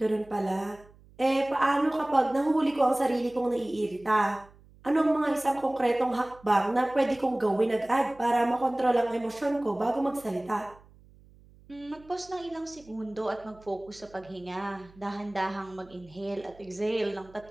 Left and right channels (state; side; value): noise; right; hum, 26 dB below the sound